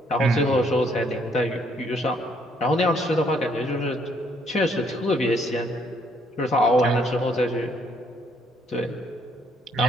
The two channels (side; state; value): both; normal; correlation 0.68